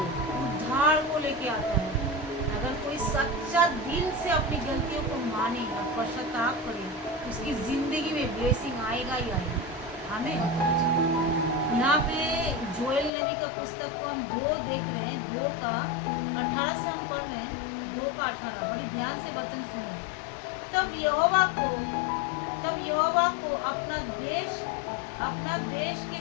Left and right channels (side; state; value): right; drops out; at 13.1 s